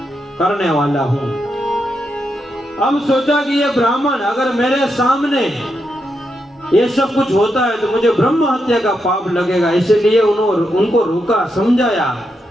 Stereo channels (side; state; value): both; normal; correlation 0.83